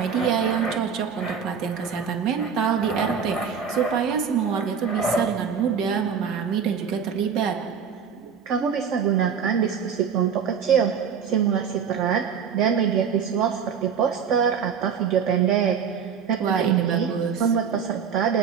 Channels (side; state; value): left; quieter; 7.0 dB